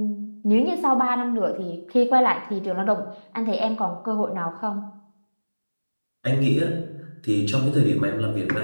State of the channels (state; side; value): inverted; both; correlation -1.00